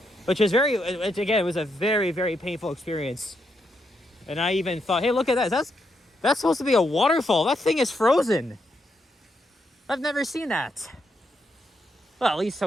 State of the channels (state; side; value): normal; both; correlation 0.80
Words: which is it was a very, very painful experience. And I even thought, hey, look at that. That's supposed to be a waterfall. That thing is frozen. I've never seen that. Well, at